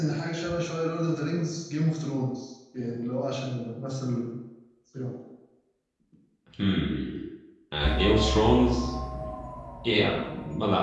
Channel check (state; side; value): identical; both; correlation 1.00